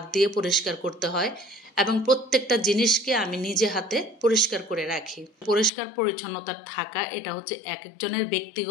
দিয়ে পরিষ্কার করতে হয়। এবং প্রত্যেকটা জিনিসকে আমি নিজে হাতে পরিষ্কার করে রাখি। পরিষ্কার পরিচ্ছন্নতা থাকা এটা হচ্ছে এক একজনের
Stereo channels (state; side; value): drops out; right; at 5.7 s